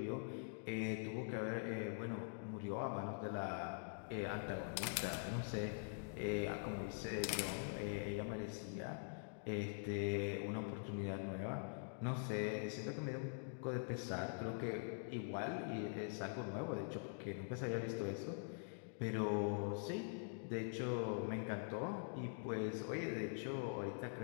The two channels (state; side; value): silent; right; digital silence